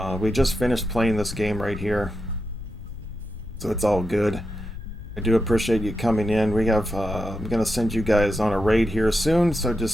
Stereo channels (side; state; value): left; noise; rumble, 11 dB below the sound